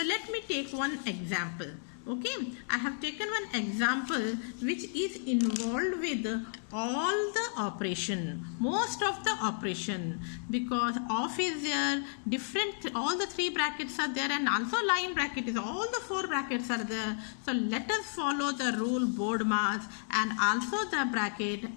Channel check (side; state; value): right; silent; digital silence